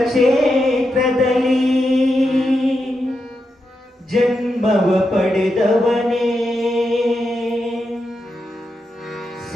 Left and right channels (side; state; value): both; normal; correlation 0.86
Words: ಕ್ಷೇತ್ರದಲ್ಲಿ ಜನ್ಮವ ಪಡೆದವನೇ,